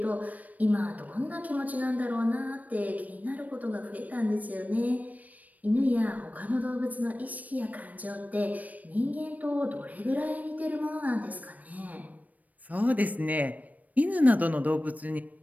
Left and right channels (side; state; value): left; late; 0.074 ms